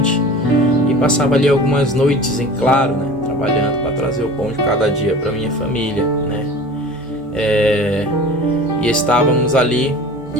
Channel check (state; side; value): normal; both; correlation 0.39